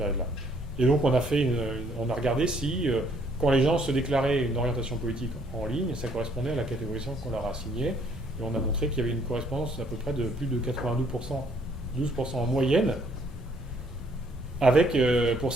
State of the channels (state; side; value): normal; both; correlation 0.64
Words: Et donc, on a regardé si, quand les gens se déclaraient une orientation politique en ligne, ça correspondait à la catégorisation qu'on leur a assignée. Et on a montré qu'il y avait une correspondance à peu près de plus de 92%, 12% en moyenne, avec, pour